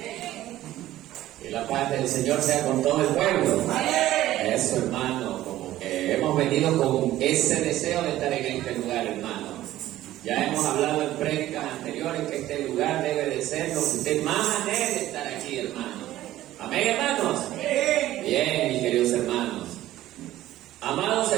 Que la paz del Señor sea con todo el pueblo. Eso, hermano, como que hemos venido con ese deseo de estar en este lugar, hermano. Ya hemos hablado en prédicas anteriores que este lugar debe de ser lo que usted más anhele estar aquí, hermano. Amén, hermanos. Bien, mis queridos hermanos. Amados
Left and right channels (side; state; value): left; quieter; 14.5 dB